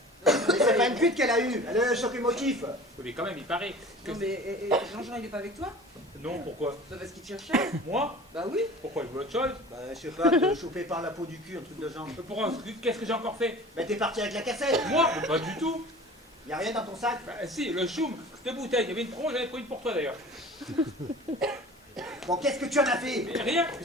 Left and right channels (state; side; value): normal; both; correlation 0.41